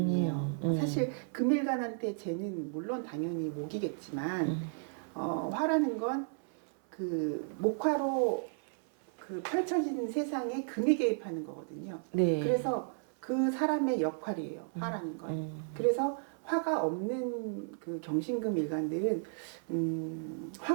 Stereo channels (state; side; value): silent; left; 55 dB below the other